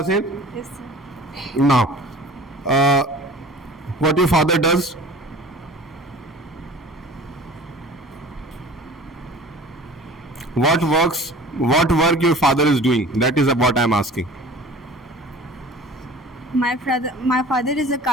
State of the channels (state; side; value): normal; both; correlation 0.43